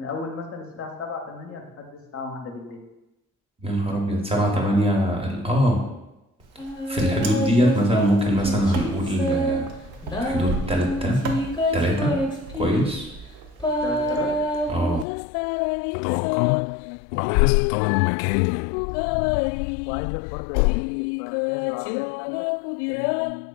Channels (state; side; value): drops out; right; at 15.1 s